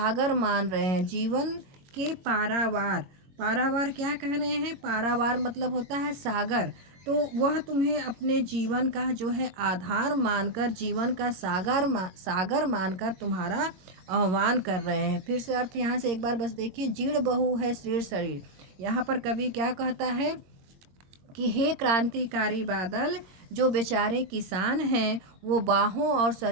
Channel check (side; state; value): left; late; 22 ms